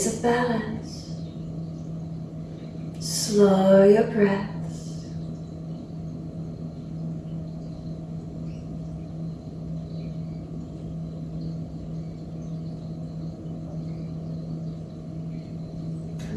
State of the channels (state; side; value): identical; both; correlation 1.00